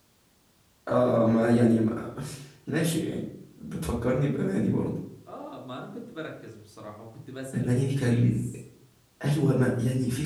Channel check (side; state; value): both; identical; correlation 1.00